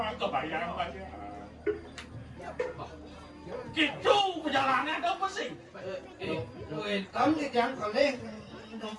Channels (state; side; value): identical; both; correlation 1.00